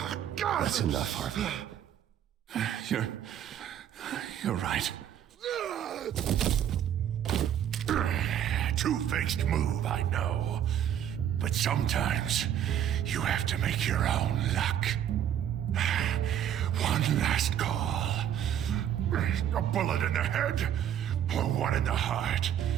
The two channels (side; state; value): left; quieter; 10.0 dB